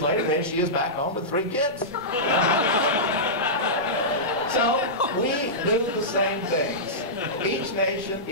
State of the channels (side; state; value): both; normal; correlation -0.14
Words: later, there she is back home with 3 kids. So we do the same things. Each nation,